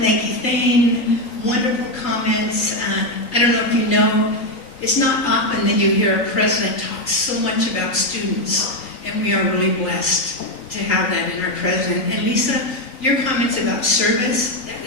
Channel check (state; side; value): late; right; 3.9 ms